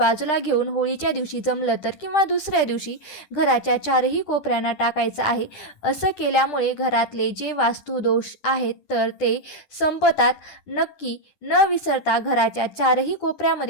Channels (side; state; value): right; late; 10 ms